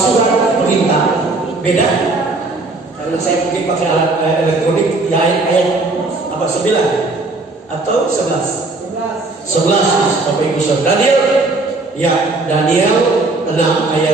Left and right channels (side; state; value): left; quieter; 3.3 dB